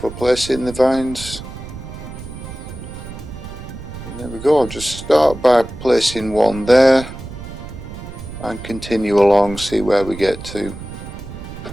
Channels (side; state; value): right; noise; rumble, 12 dB below the sound